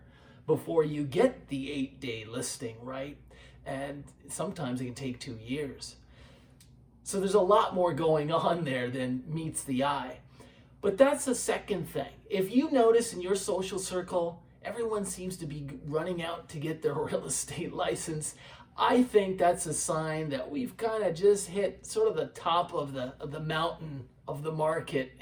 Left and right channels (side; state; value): both; identical; correlation 1.00